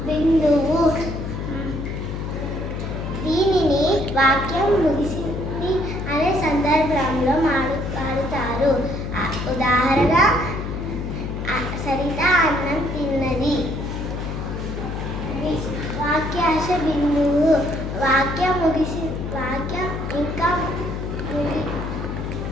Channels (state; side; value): noise; left; hum, 5 dB below the sound